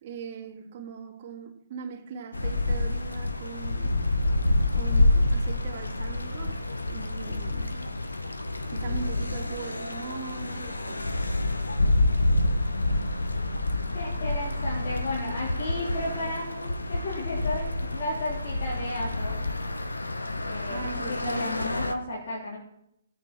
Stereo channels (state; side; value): inverted; both; correlation -0.84